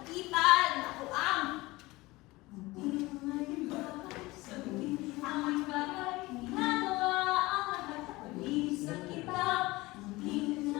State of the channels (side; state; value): right; quieter; 20.8 dB